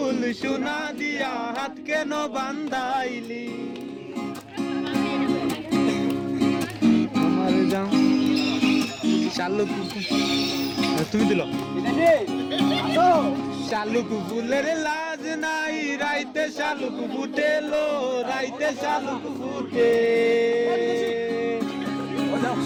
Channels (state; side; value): identical; both; correlation 1.00